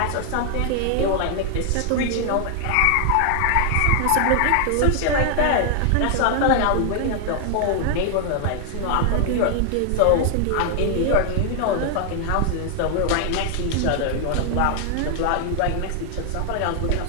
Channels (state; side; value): different; both; correlation 0.00